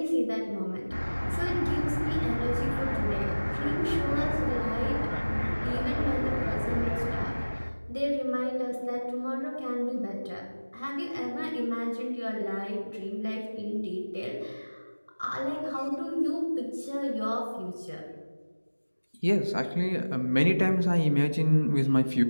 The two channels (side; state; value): both; inverted; correlation -1.00